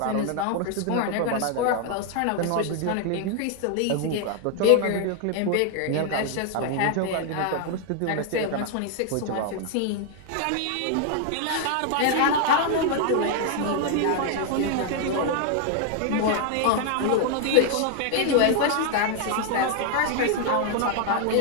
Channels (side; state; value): both; different; correlation 0.00